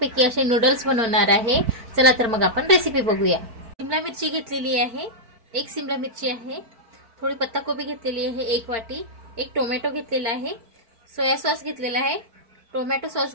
असे नूडल्स बनवणार आहे। चला तर मग आपण रेसिपी बघूया। शिमला मिरची घेतलेली आहे, एक शिमला मिरची आहे, थोडी पत्ताकोबी घेतलेली आहे, एक वाटी, एक टोमॅटो घेतलेला आहे, सोया सॉस घेतलेला आहे, टोमॅटो सॉस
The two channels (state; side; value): late; left; 4.5 ms